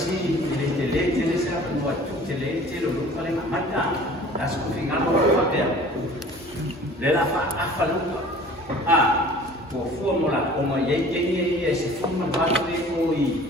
tele saya buat tu tele lu paling amat. Hasil final apa dia? Lelah apa lu? Formula como ye se forma baru itu.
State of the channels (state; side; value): normal; both; correlation 0.47